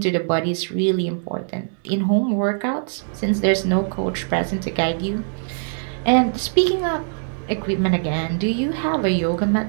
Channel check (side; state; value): left; silent; digital silence